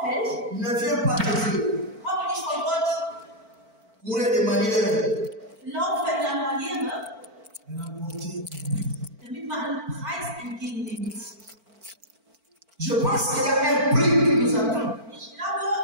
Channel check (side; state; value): left; late; 4.5 ms